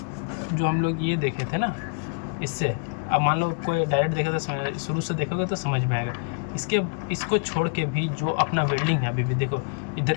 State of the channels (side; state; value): right; quieter; 38.5 dB